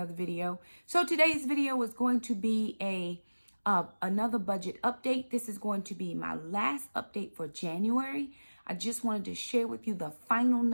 video. So today's video is going to be another budget update. This is going to be my last update for January. I just wanted to share with you the final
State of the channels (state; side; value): inverted; both; correlation -1.00